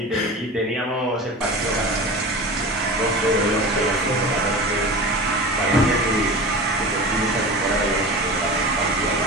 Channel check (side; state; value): both; normal; correlation 0.32